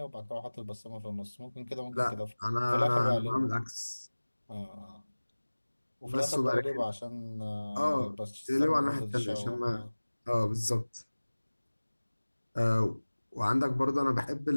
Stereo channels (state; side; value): inverted; both; correlation -1.00